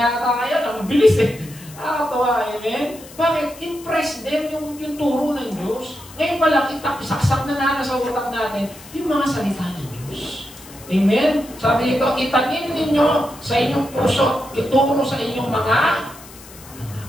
kayo, ang bilis eh. Nakakatuwa, amen? Bakit? Impress them yung turo ng Diyos. Ngayon pa lang, isaksak na sa utak natin yung mga salita ng Diyos. Amen? Sabi dito, itanim ninyo sa inyong puso, ituro sa inyong mga anak.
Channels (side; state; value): left; noise; hiss, 19 dB below the sound